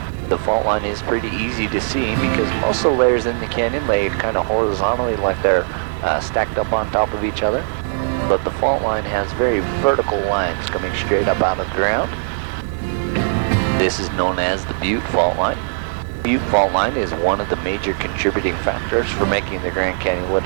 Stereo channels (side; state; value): left; silent; digital silence